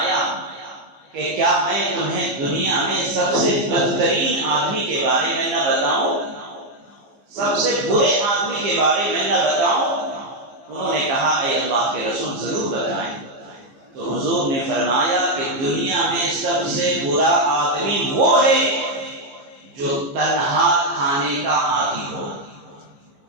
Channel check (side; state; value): left; late; 15 ms